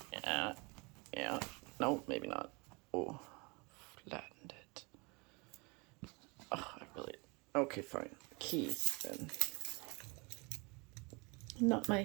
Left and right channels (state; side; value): quieter; left; 29.0 dB